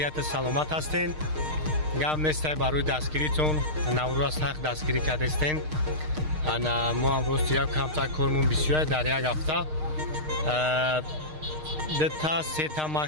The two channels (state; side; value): late; left; 6.5 ms